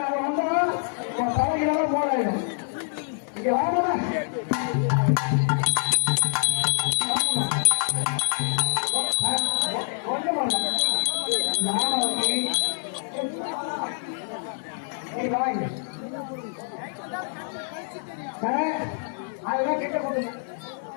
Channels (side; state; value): right; silent; 61 dB below the other